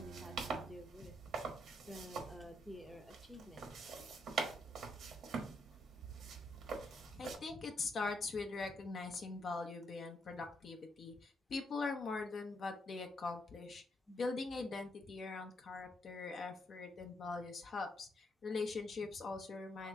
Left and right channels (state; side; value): normal; both; correlation 0.76